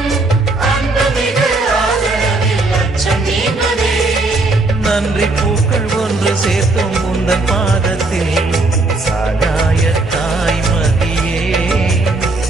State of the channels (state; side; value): quieter; left; 3.1 dB